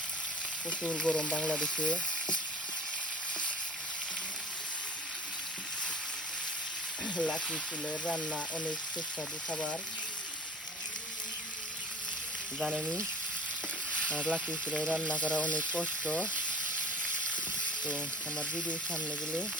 প্রচুর গরম বাংলাদেশে। লাকড়ি চুলের রান্না অনেক সুস্বাদু খাবার, জানেনি? আর লাকড়ি চুলায় রান্না করা অনেক কষ্ট। তো আমার ভিডিওর সামনে গেলে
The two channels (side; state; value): both; normal; correlation 0.39